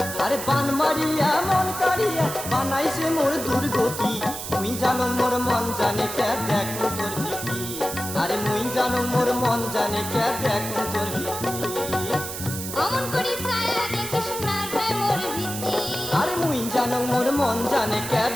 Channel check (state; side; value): noise; right; hiss, 7 dB below the sound